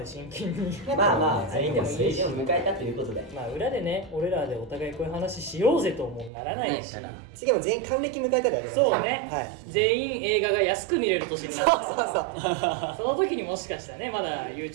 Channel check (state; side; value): drops out; left; at 6.3 s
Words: 真剣にまあまあ全員でもいいし、を迎えたということでまあ裏でね俺らでお互いこういう話しようぜともならないし、次も全員還暦迎えたりありますそうね、はい全員映画が安く見れる年になったそうそうその時にもしかしたらねまだ